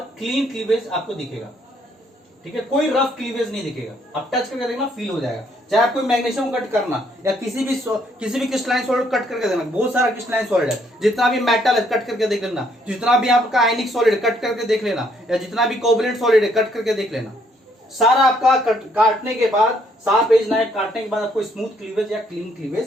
क्लीन क्लीवेज आपको दिखेगा। ठीक है, कोई रफ क्लीवेज नहीं दिखेगा, आप टच करके देखना फील हो जाएगा। चाहे आप कोई मैग्नीशियम कट करना या किसी भी क्रिस्टलाइन सॉलिड कट करके देखना, बहुत सारा क्रिस्टलाइन सॉलिड है, जितना भी मेटल है कट करके देख लेना, जितना भी आपका आयनिक सॉलिड कट करके देख लेना, या जितना भी कोवलेंट सॉलिड है कट करके देख लेना, सारा आपका काटने के बाद, शार्प एज नाइफ काटने के बाद आपको स्मूथ क्लीवेज या क्लीन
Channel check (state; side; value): normal; both; correlation 0.68